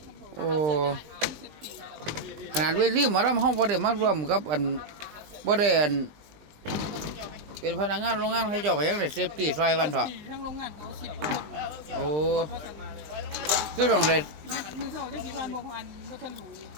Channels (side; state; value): left; late; 19 ms